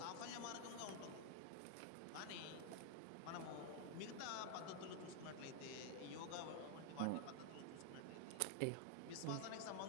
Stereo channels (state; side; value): different; both; correlation 0.00